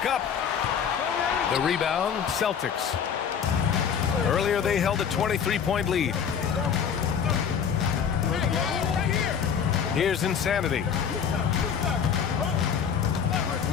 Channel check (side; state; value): right; quieter; 7.4 dB